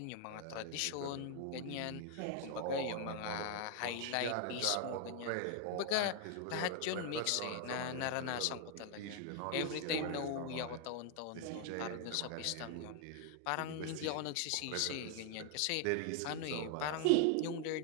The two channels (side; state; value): both; different; correlation 0.00